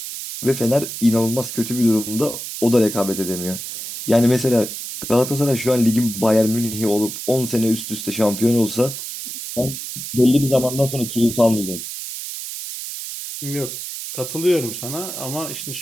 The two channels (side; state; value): right; noise; hiss, 8 dB below the sound